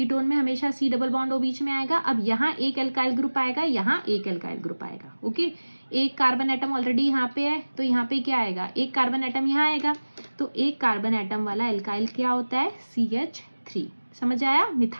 में हमेशा C डबल बॉन्ड O बीच में आएगा। अब यहाँ एक एल्काइल ग्रुप आएगा, यहाँ एक एल्काइल ग्रुप आएगा, ओके। एक कार्बन एटम ऑलरेडी यहाँ पे है तो यहाँ पे क्या आएगा, एक कार्बन एटम यहाँ आएगा। तो एक कार्बन एटम वाला एल्काइल क्या होता है, CH3। समझ आया,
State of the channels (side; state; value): both; inverted; correlation -1.00